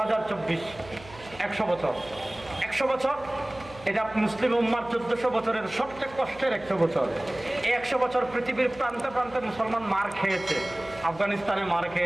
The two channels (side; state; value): right; noise; hum, 19 dB below the sound